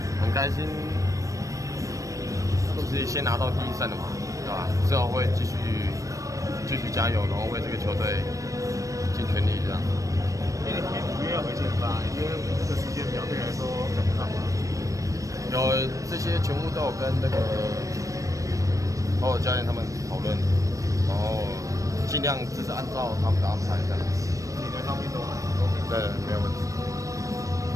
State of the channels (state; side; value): late; left; 0.16 ms